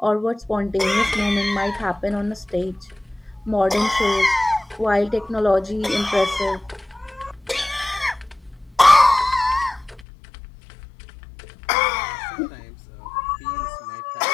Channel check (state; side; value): drops out; right; at 10.1 s